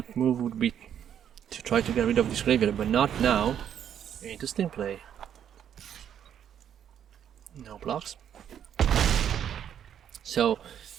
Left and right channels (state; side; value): quieter; left; 9.3 dB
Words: move would be to try to get rid of this graveyard, but not now. Interesting play. No blocks. So